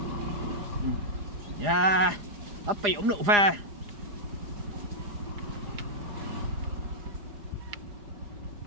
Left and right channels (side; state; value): left; late; 4.9 ms